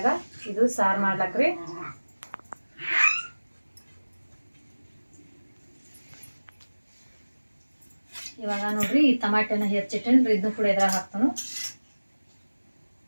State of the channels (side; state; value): both; inverted; correlation -1.00